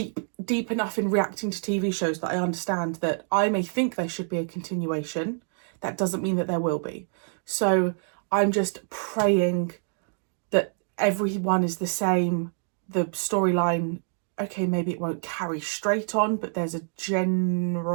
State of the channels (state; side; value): silent; left; 60 dB below the other